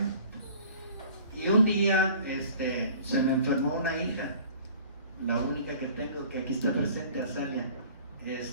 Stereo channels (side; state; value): both; inverted; correlation -0.48